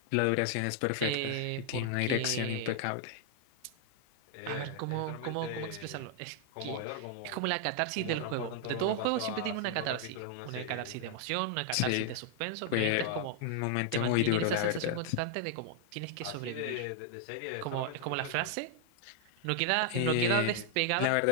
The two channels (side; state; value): both; different; correlation 0.00